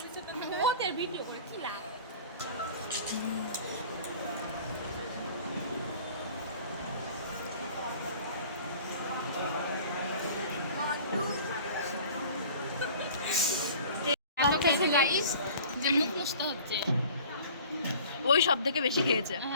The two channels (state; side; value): inverted; both; correlation -0.46